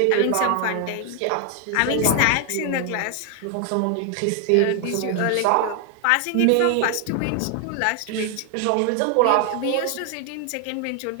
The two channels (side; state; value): both; different; correlation 0.00